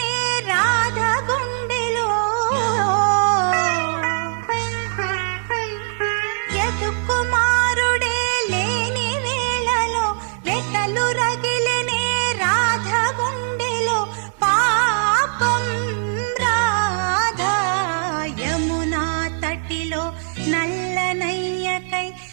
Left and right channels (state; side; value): silent; left; digital silence